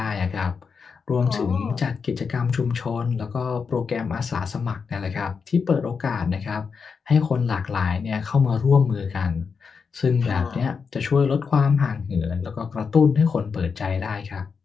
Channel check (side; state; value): right; quieter; 5.6 dB